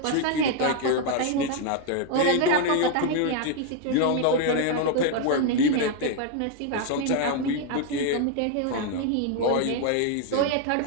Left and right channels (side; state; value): both; different; correlation 0.00